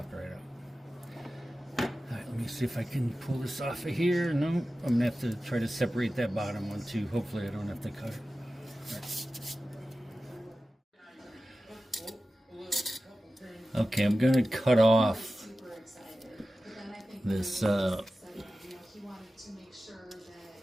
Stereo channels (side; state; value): both; normal; correlation 0.95